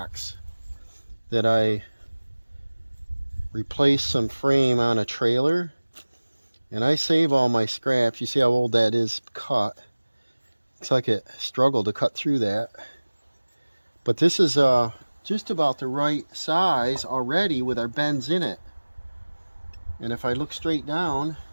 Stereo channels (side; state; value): both; inverted; correlation -1.00